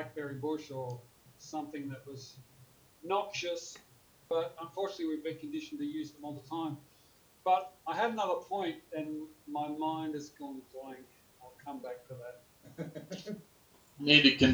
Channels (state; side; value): identical; both; correlation 1.00